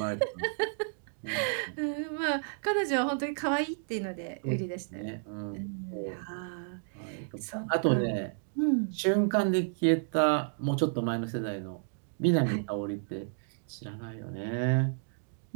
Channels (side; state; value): left; silent; digital silence